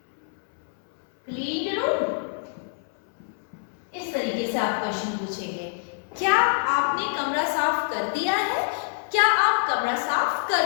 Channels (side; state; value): right; silent; 61 dB below the other